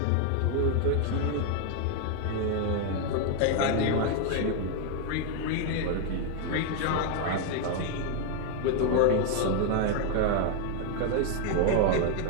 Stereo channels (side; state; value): both; different; correlation 0.00